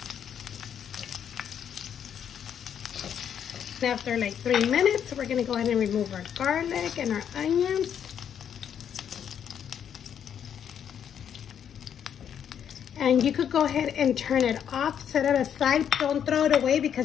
After like 3 minutes, we're gonna go ahead and remove our garlic and our onions. And you could go ahead and turn it off, set it aside. Don't throw it away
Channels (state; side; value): quieter; right; 8.7 dB